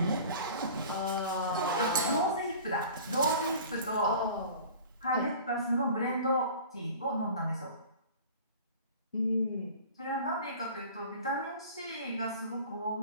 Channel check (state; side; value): inverted; both; correlation -0.42